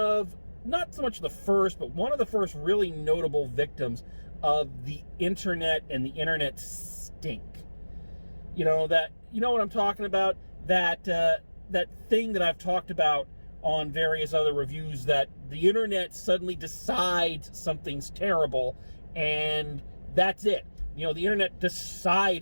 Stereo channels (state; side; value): inverted; both; correlation -1.00